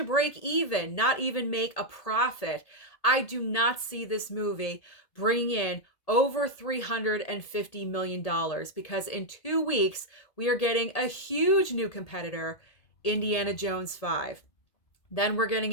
break even, not even make a profit. I do not see this movie bringing in over $350 million, because in 2 weeks, we are getting a huge new competitor, Indiana Jones 5. Then we're getting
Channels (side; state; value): right; late; 1.8 ms